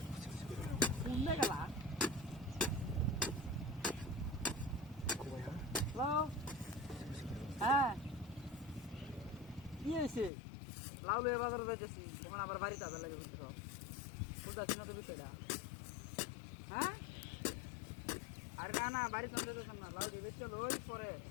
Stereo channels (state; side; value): drops out; right; at 10.3 s